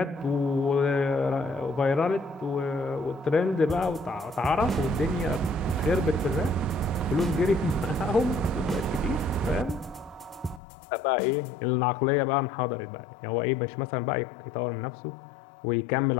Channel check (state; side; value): drops out; right; at 10.6 s